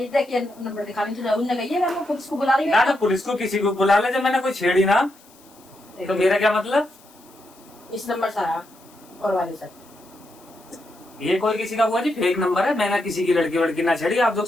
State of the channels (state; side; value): noise; left; hiss, 27 dB below the sound